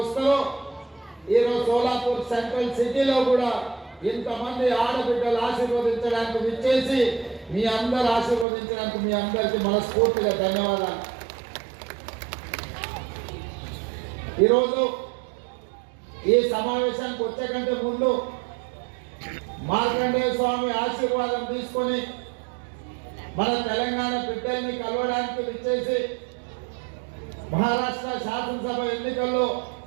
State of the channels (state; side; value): drops out; left; at 8.5 s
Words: ఈరోజు సోలాపూర్ సెంట్రల్ సిటీలో కూడా ఇంతమంది ఆడబిడ్డలు ఆశీర్వదించడానికి విచ్చేసి మీ అందరు ఆశీర్వదించడానికి మీ అందరికీ మనస్ఫూర్తిగా ధన్యవాదాలు. ఈరోజు ఈ సమావేశానికి వచ్చే కంటే ముందు మార్కండేయ స్వామి ఆశీర్వాదం తీసుకొని మన తెలంగాణ బిడ్డల్ని కలవడానికి విచ్చేసి మహారాష్ట్ర శాసనసభ ఎన్నికల్లో